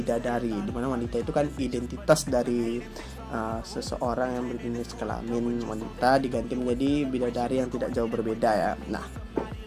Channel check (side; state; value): both; identical; correlation 1.00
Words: dimana wanita itu kan identitas dari seseorang yang berjenis kelamin wanita diganti menjadi bidadari yang tidak jauh berbeda ya.